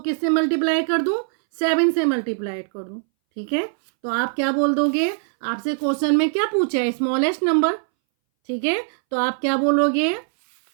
किससे मल्टीप्लाई कर दूं, 7 से मल्टीप्लाई कर दूं। ठीक है, तो आप क्या बोल दोगे, आपसे क्वेश्चन में क्या पूछा है, स्मॉलेस्ट नंबर। ठीक है, तो आप क्या बोलोगे,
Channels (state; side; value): silent; left; 62 dB below the other